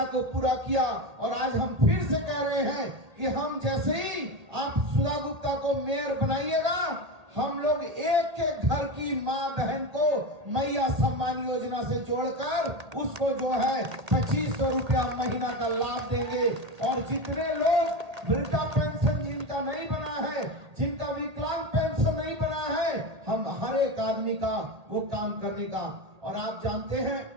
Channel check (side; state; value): left; late; 1.8 ms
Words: को पूरा किया। और आज हम फिर से कह रहे हैं कि हम जैसे ही आप सुधा गुप्ता को मेयर बनाइएगा, हम लोग एक एक घर की माँ बहन को मैया सम्मान योजना से जोड़कर उसको जो है 2500 रुपया महीना का लाभ देंगे। और जितने लोग वृद्धा पेंशन जिनका नहीं बना है, जिनका विकलांग पेंशन नहीं बना है, हम हर एक आदमी का वो काम करने का। और आप जानते हैं